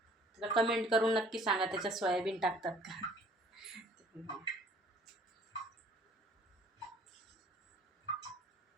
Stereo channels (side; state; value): both; normal; correlation 0.55